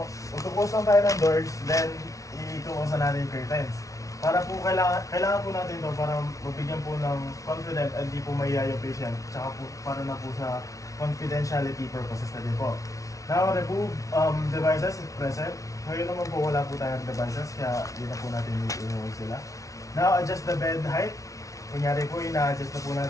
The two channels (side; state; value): right; late; 0.16 ms